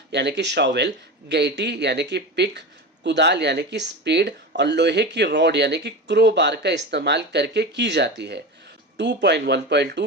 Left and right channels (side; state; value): both; normal; correlation 0.25